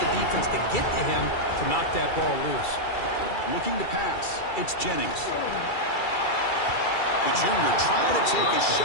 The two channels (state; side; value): late; right; 2.3 ms